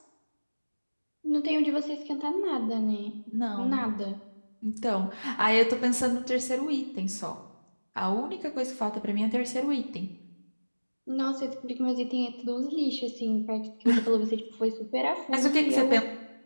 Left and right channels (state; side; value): inverted; both; correlation -1.00